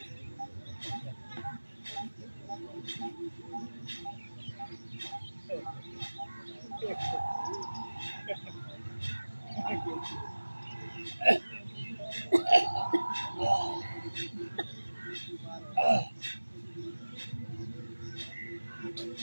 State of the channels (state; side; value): inverted; both; correlation -1.00